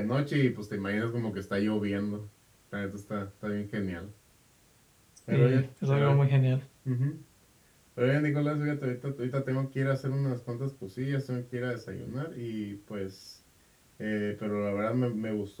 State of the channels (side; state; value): both; identical; correlation 1.00